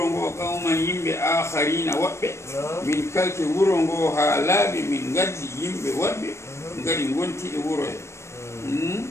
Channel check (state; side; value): late; right; 0.13 ms